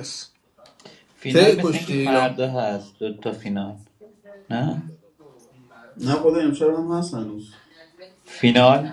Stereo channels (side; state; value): both; identical; correlation 1.00